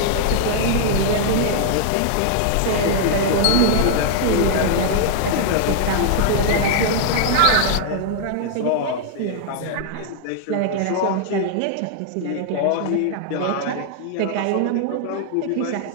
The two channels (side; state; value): both; different; correlation -0.01